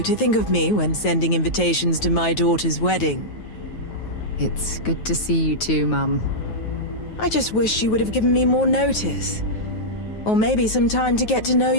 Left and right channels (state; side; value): late; right; 9.3 ms